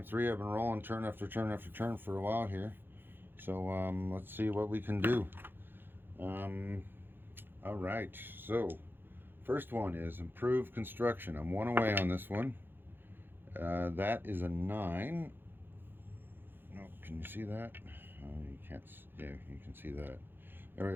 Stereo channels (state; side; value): late; left; 0.10 ms